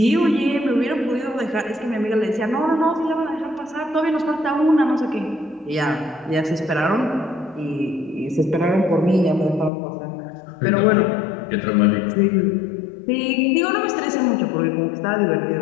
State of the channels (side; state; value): right; drops out; at 9.7 s